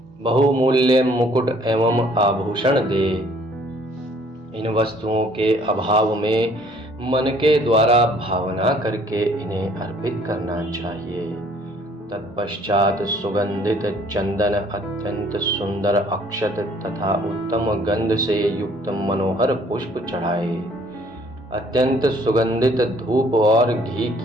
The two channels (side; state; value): both; normal; correlation 0.59